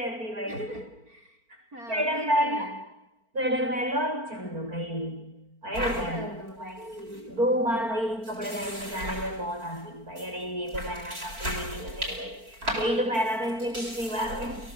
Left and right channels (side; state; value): left; late; 4.4 ms